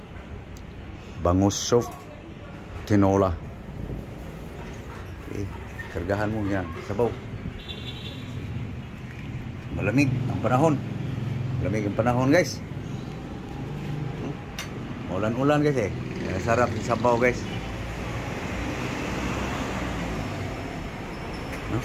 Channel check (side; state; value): both; identical; correlation 1.00